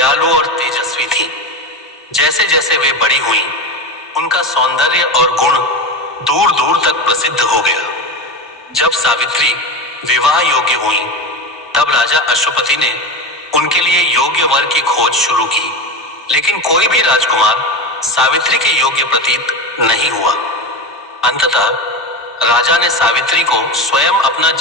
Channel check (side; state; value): both; normal; correlation 0.22